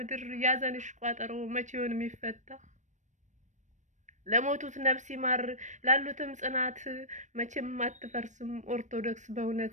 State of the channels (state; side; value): late; left; 0.35 ms